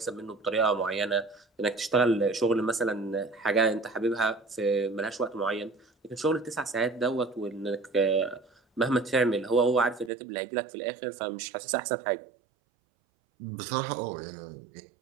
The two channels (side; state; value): left; drops out; at 10.1 s